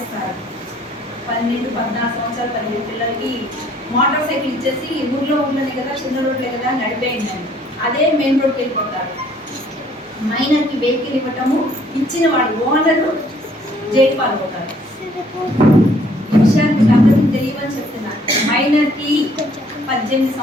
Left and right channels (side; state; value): both; normal; correlation 0.61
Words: 12-14 సంవత్సరాల 15 పిల్లలకి మోటార్ సైకిల్ ఇచ్చేసి ఊర్లో కదా, చిన్న రోడ్లే కదా నడిపేయండి, అదే మెయిన్ రోడ్కి వెళ్ళిపోతారు. మైనర్కి వెహికల్ ఇవ్వటము, ఇచ్చిన వాడు ఓనరు జైలు పాల్పోతారు. ఈ విషయానికి అందరికీ తెలియవని చెప్తున్నారు. మైనర్కి 18